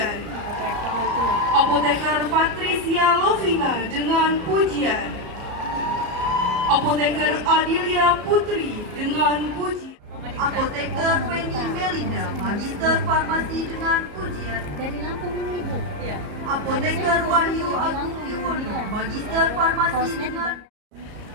Apoteker Patricia Lovina dengan pujian. Apoteker Adilia Putri dengan pujian. Apoteker Penny Melinda, Magister Farmasi dengan pujian. Dari Lampung ini, Bu. Iya. Apoteker Wahyu Agung Yuwono, Magister Farmasi dengan.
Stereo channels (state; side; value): late; left; 34 ms